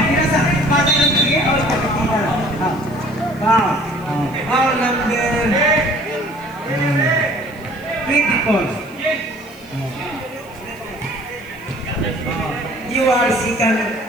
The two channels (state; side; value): noise; left; hiss, 26 dB below the sound